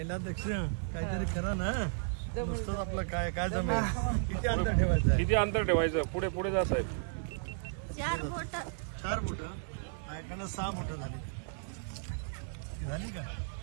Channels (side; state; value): left; silent; digital silence